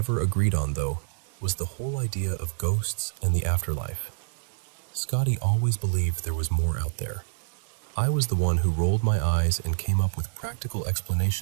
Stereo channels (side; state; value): left; silent; digital silence